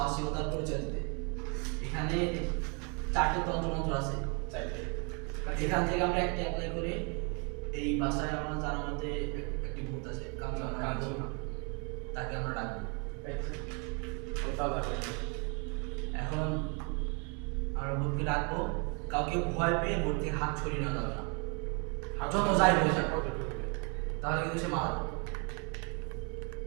পরিচয় দিতে। এখানে 4টি তন্ত্রমন্ত্র আছে, এখান থেকে আমরা একটা অ্যাপ্লাই করে এই বাসায় আমরা জানার মধ্যে একটি ভূত আছে কাঞ্চনা, তাকে আমরা ডাকবো। এখন আমরা ভূতকে ডাকবো, কাউকে ভয় পেয়ে ভূত থেকে হাত ছড়িয়ে নেওয়া যাবে না, যত যাই হয়ে যাক তাহলে কিন্তু সে মারা যাবে।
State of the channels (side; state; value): left; quieter; 35.1 dB